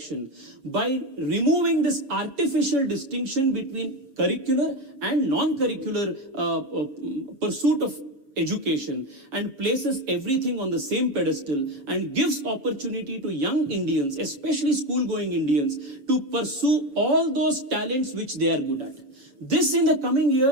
by removing this artificial distinction between curricular and non-curricular pursuit of education and places everything on the same pedestal and gives opportunity to young Indians, especially school-going Indians, to pursue all those talents which they are good at. This in the coming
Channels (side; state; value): left; late; 7.2 ms